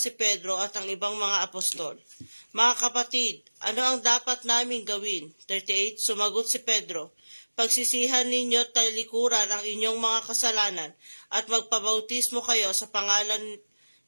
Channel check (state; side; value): inverted; both; correlation -1.00